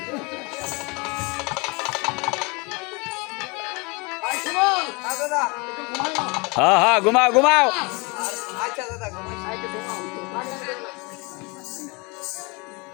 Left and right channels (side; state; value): right; quieter; 28.2 dB